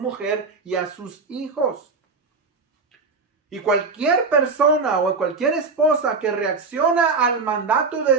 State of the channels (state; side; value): quieter; left; 4.3 dB